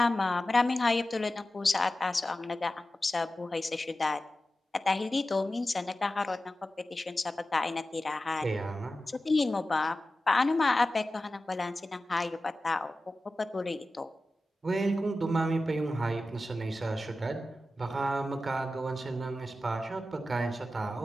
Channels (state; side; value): normal; both; correlation 0.94